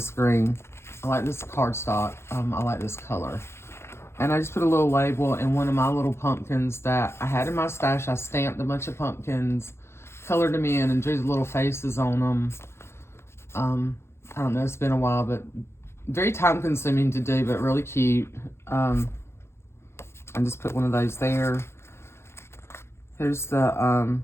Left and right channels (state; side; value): late; right; 0.12 ms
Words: green. I like this cardstock. I like this color. And I just put a little label in one of my little pumpkins that I had in my stash. I stamped a bunch of pumpkins, colored them in, and drew the little faces on them. I don't know, it's been a while, but very time consuming to do, but really cute. I just put one of those there. Here's the